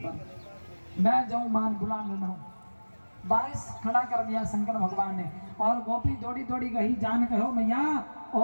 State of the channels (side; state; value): both; inverted; correlation -1.00